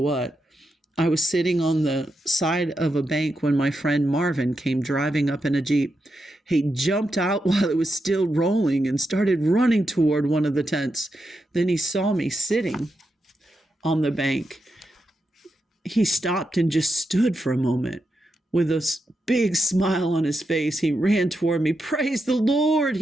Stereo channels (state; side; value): normal; both; correlation 0.86